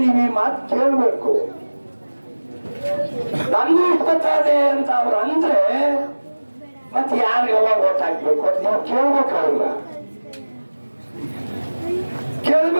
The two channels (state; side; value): inverted; both; correlation -1.00